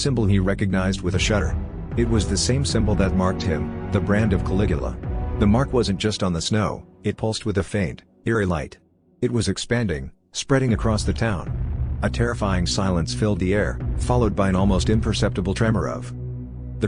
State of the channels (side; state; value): both; identical; correlation 1.00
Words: he recognized with a shudder. It was the same symbol that marked him, the brand of Caligula. The mark wasn't just on the snow, it pulsed with a faint, eerie light. It was expanding, spreading across the town. A terrifying silence filled the air, followed by an almost imperceptible tremor of the